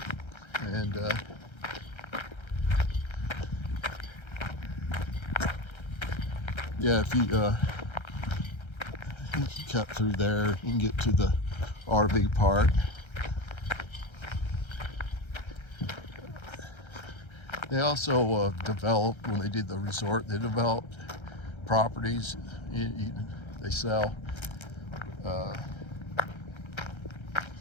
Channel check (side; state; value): right; late; 1.3 ms